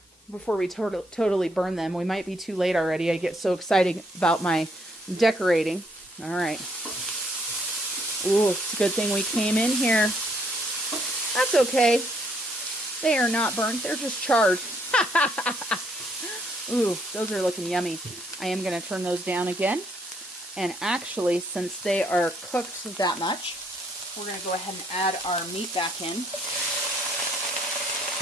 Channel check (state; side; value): normal; both; correlation 0.69